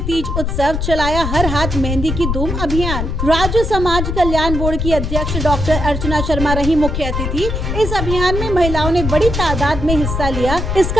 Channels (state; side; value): noise; left; rumble, 3 dB below the sound